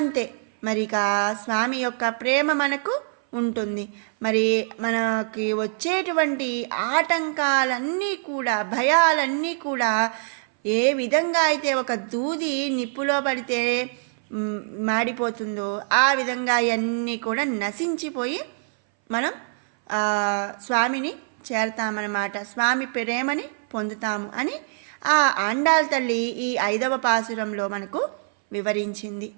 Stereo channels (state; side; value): silent; left; 60 dB below the other